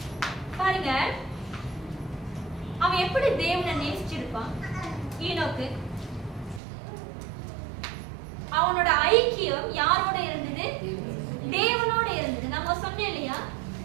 பாருங்க அவன் எப்படி தேவனை நேசிச்சிருப்பான். ஈனோக்கு அவனோட ஐக்கியம் யாரோட இருந்தது? தேவனோட இருந்தது. நம்ம சொன்னோம் இல்லையா,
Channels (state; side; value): drops out; left; at 6.6 s